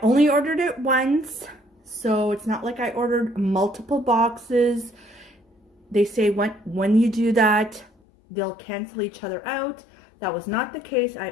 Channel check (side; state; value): right; drops out; at 7.9 s